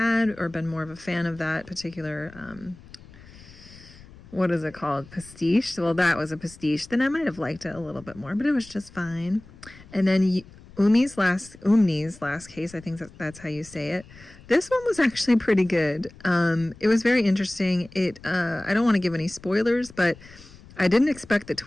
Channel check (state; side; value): noise; left; rumble, 21 dB below the sound